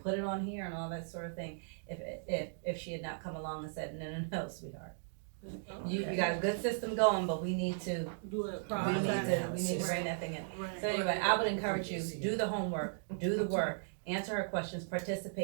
put it on here and all that sort of thing if she had not come along and said, no, sweetheart. You got a good system going, but we need to Do it we need to bring that thing in. So anyway, I would encourage you, do the homework, do the work, answer her questions,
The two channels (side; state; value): left; silent; digital silence